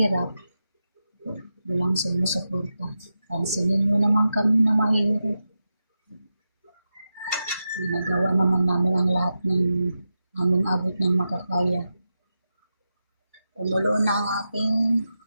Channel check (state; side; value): inverted; both; correlation -0.90